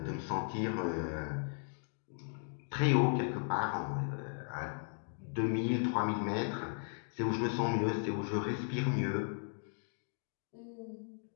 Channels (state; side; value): silent; right; 53 dB below the other